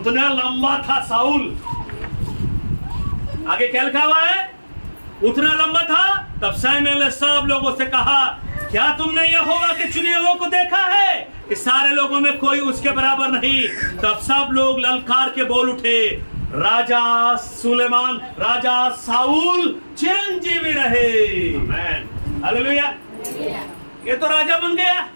लंबा था साउल. आगे क्या लिखा हुआ है? उतना लंबा था. तब शमूएल ने सब लोगों से कहा क्या तुमने यहोवा के चुने हुए को देखा है कि सारे लोगों में कोई उसके बराबर नहीं? तब सब लोग ललकार के बोल उठे राजा सुलेमान, राजा साउल चिरंजीवी रहे. हालेलुया. ये तो राजा बन गया,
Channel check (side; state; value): both; inverted; correlation -1.00